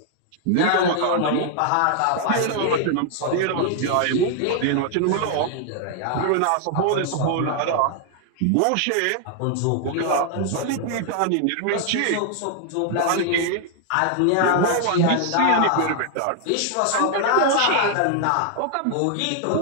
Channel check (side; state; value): both; different; correlation 0.00